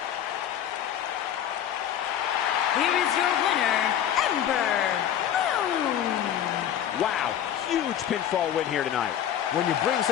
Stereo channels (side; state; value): right; quieter; 10.2 dB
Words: Here is your winner, Ember Moon. Wow, huge pinfall win here tonight. When you bring